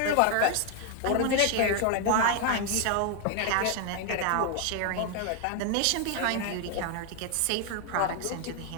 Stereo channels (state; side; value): different; both; correlation 0.01